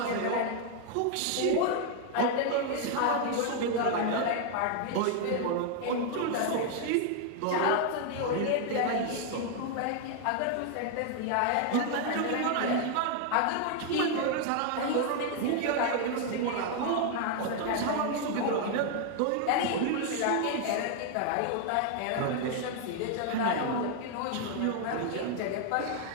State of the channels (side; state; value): both; different; correlation 0.00